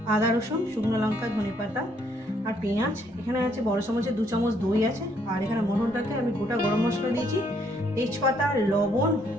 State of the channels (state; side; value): normal; both; correlation 0.69